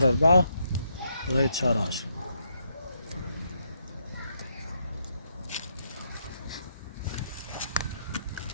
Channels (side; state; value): both; inverted; correlation -0.77